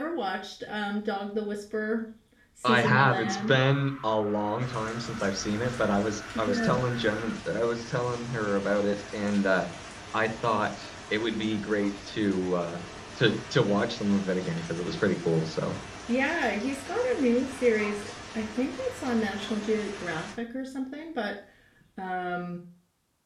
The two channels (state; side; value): identical; both; correlation 1.00